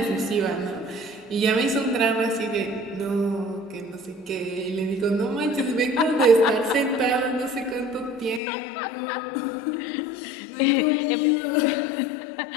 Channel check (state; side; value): drops out; right; at 8.4 s